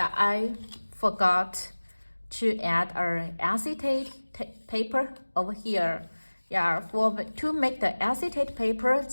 I forgot to add an acetate paper over here. Yeah, to make the acetate paper,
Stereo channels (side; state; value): both; inverted; correlation -1.00